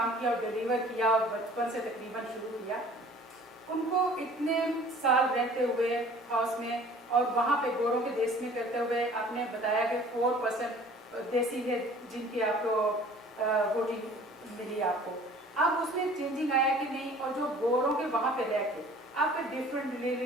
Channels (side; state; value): both; normal; correlation 0.49